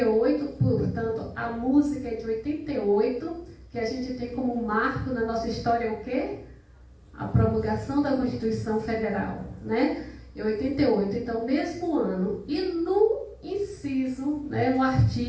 portanto, a música é de 88, que a gente tem como marco na nossa história o quê? A promulgação da Constituição Federal, né? Em 88, então, mesmo ano. E no inciso, né, no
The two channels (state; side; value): identical; both; correlation 1.00